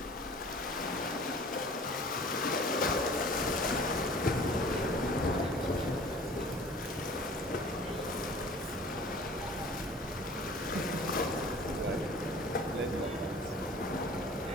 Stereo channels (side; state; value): both; normal; correlation 0.46